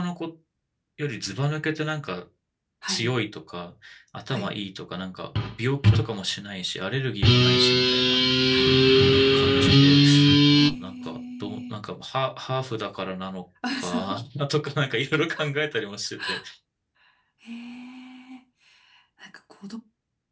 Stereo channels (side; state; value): both; identical; correlation 1.00